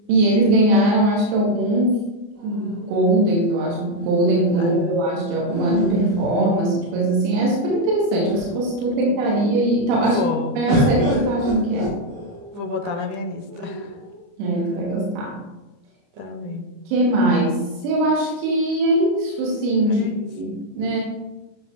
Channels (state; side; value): late; left; 29 ms